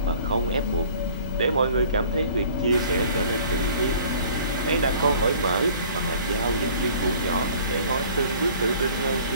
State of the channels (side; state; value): both; inverted; correlation -0.51